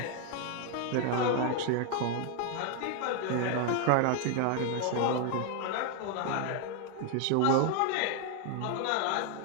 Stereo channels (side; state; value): both; different; correlation 0.00